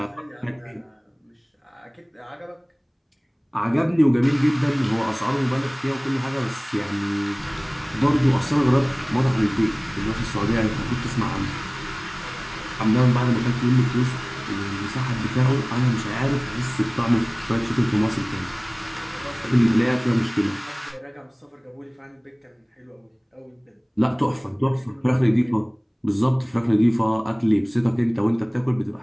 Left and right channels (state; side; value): identical; both; correlation 1.00